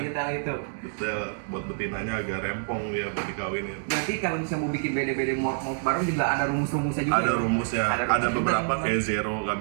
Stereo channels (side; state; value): left; silent; digital silence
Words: itu. Detail, buat betinanya agak rempong ya buat dikawinin. Berarti kalau misalnya mau bikin bede-bede mort baru juga ada rumus-rumusnya juga. Ada ya? rumusnya, Ada ada rumus beberapa juga, kayak zero nggak